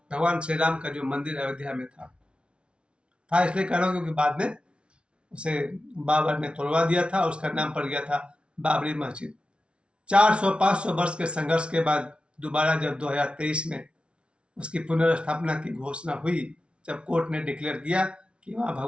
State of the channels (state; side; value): late; left; 0.058 ms